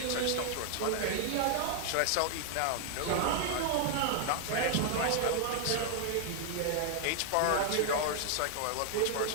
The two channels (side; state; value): both; different; correlation 0.00